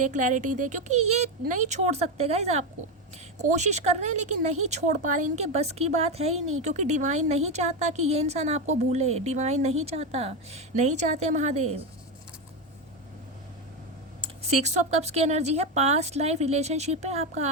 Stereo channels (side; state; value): both; normal; correlation 0.12